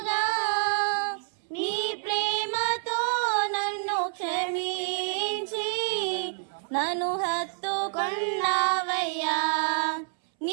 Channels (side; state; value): left; silent; 59 dB below the other